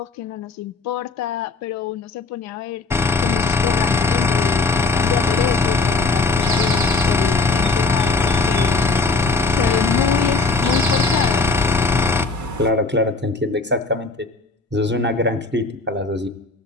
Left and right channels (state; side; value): quieter; right; 3.8 dB